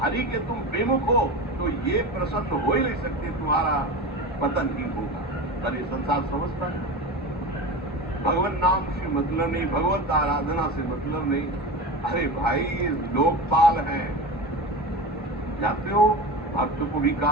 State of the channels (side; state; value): both; normal; correlation 0.27